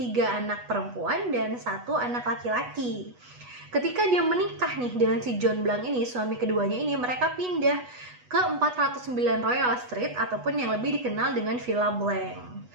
anak perempuan, dan 1 anak laki-laki. Ketika dia menikah nih dengan si John Blanc ini, suami keduanya ini, mereka pindah ke 409 Royal Street ataupun yang lebih dikenal dengan Villa Blanc.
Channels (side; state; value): left; late; 8.2 ms